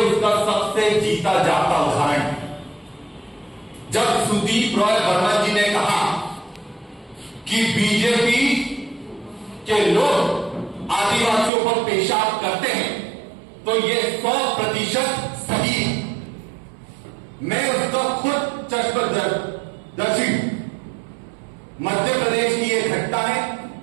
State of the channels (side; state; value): left; drops out; at 11.5 s